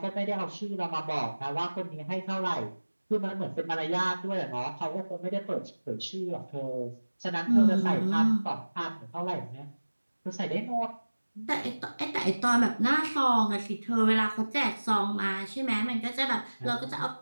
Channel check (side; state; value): both; inverted; correlation -1.00